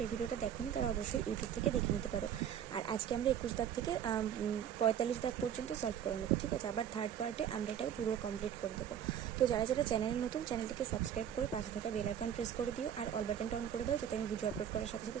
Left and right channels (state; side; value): quieter; left; 9.3 dB